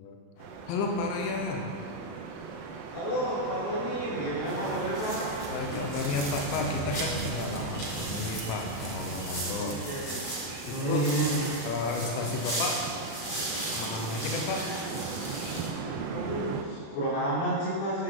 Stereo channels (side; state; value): right; late; 35 ms